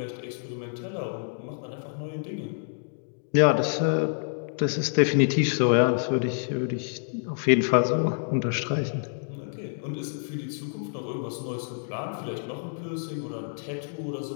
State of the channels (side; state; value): right; silent; digital silence